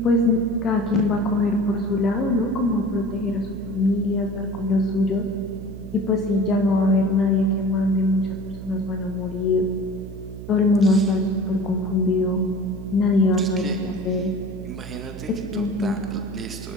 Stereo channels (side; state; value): right; noise; hum, 12 dB below the sound